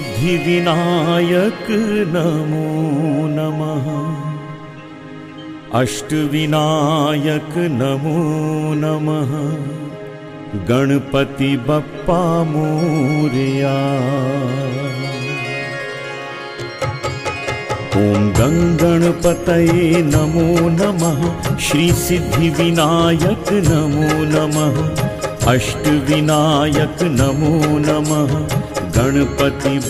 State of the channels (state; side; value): identical; both; correlation 1.00